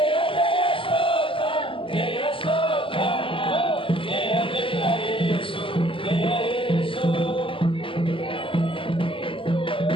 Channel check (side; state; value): right; late; 0.25 ms